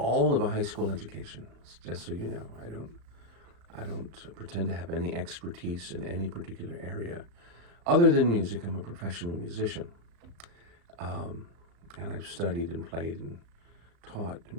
of a high school education, just so you know. I don't pretend to have any expertise in any particular area. Other than music, I'm a professional musician. And I've studied and played and taught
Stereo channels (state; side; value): late; left; 35 ms